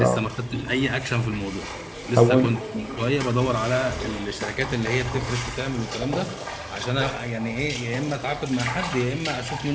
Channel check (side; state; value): both; identical; correlation 1.00